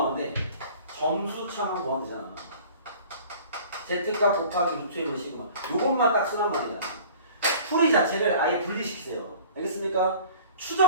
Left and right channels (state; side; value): inverted; both; correlation -0.47